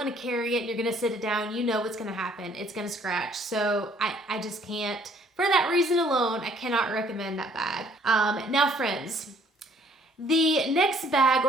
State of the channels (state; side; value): normal; both; correlation 0.61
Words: to carry it and you're going to sit it down, you know what's going to happen. It's going to scratch. So I just can't, for that reason alone, I cannot recommend that bag. Now friends, the next bag,